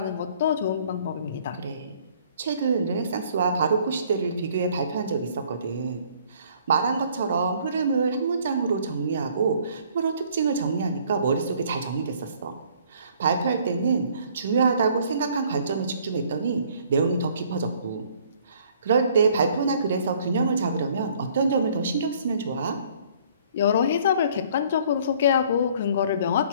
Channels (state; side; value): inverted; both; correlation -0.58